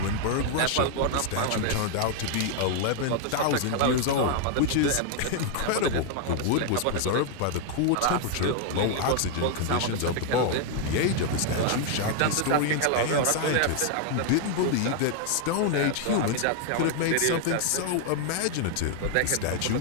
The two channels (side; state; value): both; different; correlation 0.00